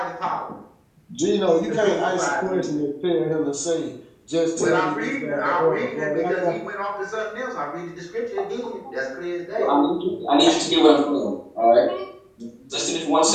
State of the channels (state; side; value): identical; both; correlation 1.00